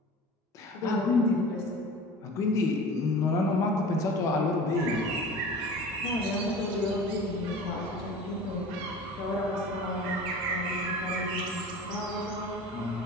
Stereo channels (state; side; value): normal; both; correlation 0.39